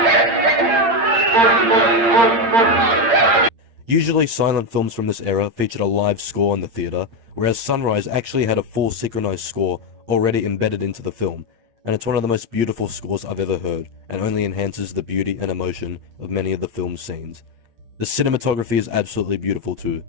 Usually silent films from this era featured a live score in the theatre, whereas Sunrise actually had a full synchronized score already embedded into the film, and it's one of the most beautiful scores I've ever heard, and only enhances the beauty and emotion of many of the film's scenes. The cinematography is absolutely beautiful too,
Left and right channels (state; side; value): late; left; 8.7 ms